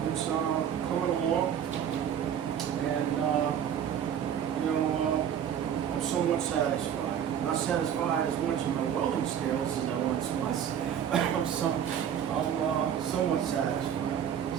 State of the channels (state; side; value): quieter; left; 9.0 dB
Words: it's coming along, and I'm somewhat satisfied. Not satisfied as much in my welding skills as I once was. I'm somewhat satisfied.